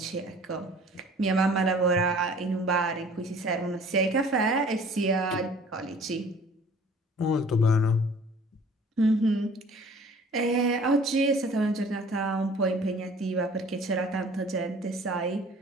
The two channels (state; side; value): normal; both; correlation 0.50